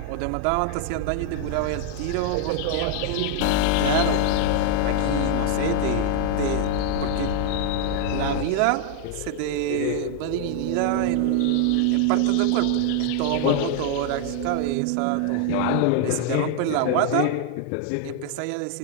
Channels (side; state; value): both; different; correlation 0.00